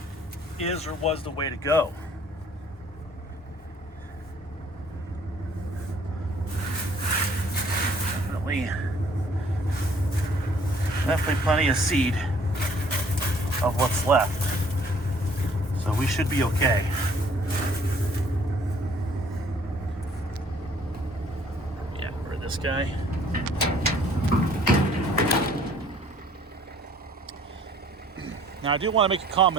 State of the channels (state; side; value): normal; both; correlation 0.58